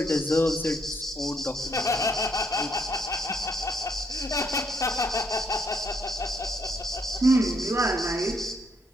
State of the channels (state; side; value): normal; both; correlation 0.72